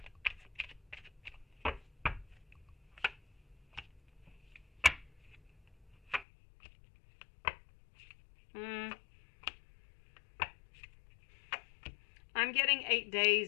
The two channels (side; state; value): right; drops out; at 6.2 s